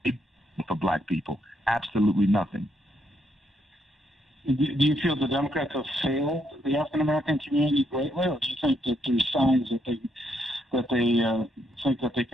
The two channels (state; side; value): normal; both; correlation 0.75